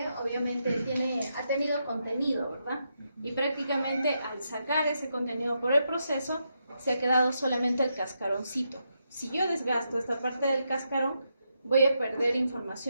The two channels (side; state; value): both; inverted; correlation -0.83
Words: obviamente ha tenido contenido, ¿verdad? Y prácticamente al sacar ese contenido por el proceso, se ha quedado solamente el cascaroncito. Si yo desgasto esta parte del cascarón, voy a perder